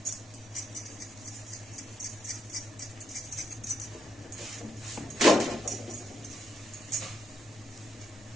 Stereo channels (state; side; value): normal; both; correlation 0.79